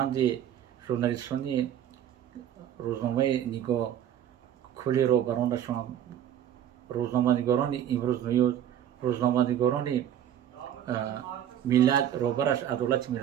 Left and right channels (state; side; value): quieter; left; 10.4 dB